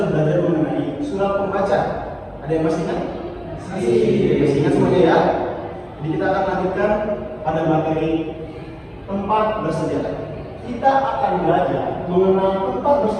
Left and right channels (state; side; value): identical; both; correlation 1.00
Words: belajar mengenai surat pembaca. Ada yang masih ingat? Masih ingat semuanya ya? Jadi kita akan lanjutkan pada materi tempat bersejarah. Kita akan belajar mengenal tempat